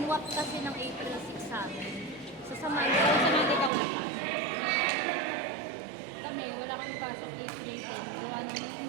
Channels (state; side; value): drops out; left; at 3.7 s